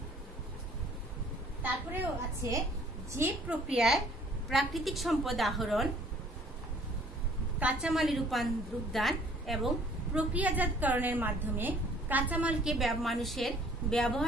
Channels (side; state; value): both; normal; correlation 0.57